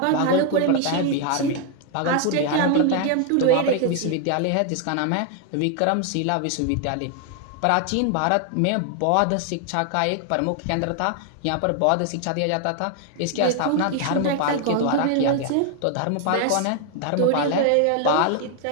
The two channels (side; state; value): both; different; correlation 0.00